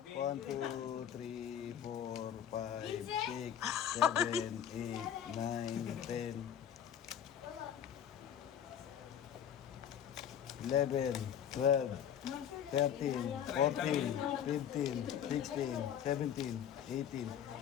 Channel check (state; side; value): quieter; right; 9.3 dB